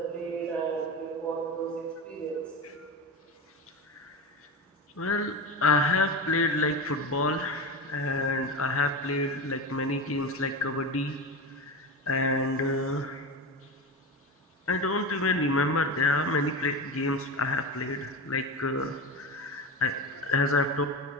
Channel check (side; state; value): both; normal; correlation 0.23